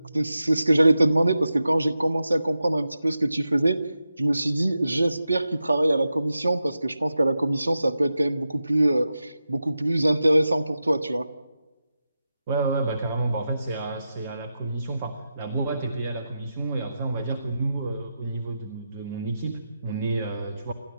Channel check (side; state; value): both; inverted; correlation -0.90